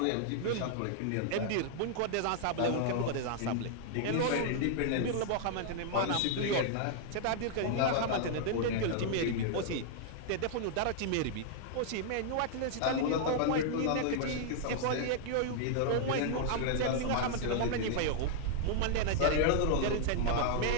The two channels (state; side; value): different; both; correlation -0.01